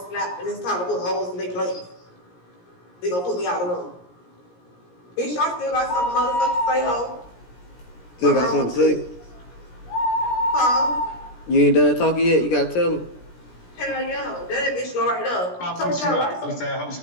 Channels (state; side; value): late; right; 17 ms